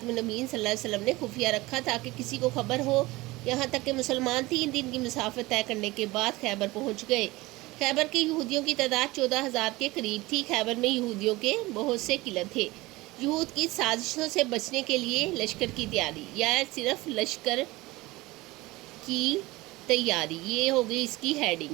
النبیین صلی اللہ علیہ وسلم نے خفیہ رکھا تاکہ کسی کو خبر ہو، یہاں تک کہ مسلمان 3 دن کی مسافت طے کرنے کے بعد خیبر پہنچ گئے۔ خیبر کے یہودیوں کی تعداد 14,000 کے قریب تھی۔ خیبر میں یہودیوں کے بہت سے قلعے تھے۔ یہود کی سازشوں سے بچنے کے لیے لشکر کی تیاری، یا صرف لشکر کی تیاری، یہ ہو گئی اس کی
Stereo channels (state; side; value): quieter; left; 20.5 dB